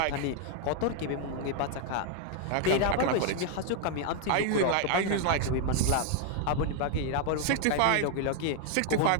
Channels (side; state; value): both; different; correlation 0.00